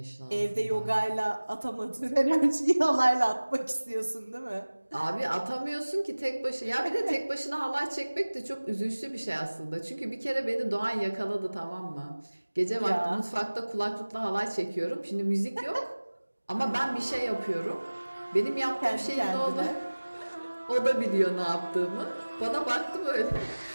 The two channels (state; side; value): inverted; both; correlation -1.00